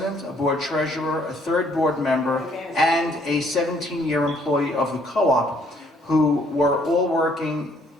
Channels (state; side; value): normal; both; correlation 0.65